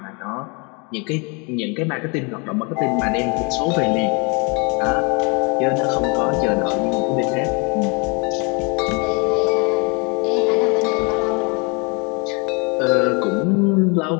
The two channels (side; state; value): right; quieter; 32.0 dB